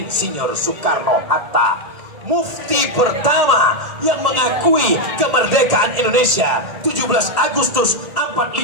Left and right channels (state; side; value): late; left; 1.8 ms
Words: Soekarno-Hatta. Mufti pertama yang mengakui kemerdekaan Indonesia 17 Agustus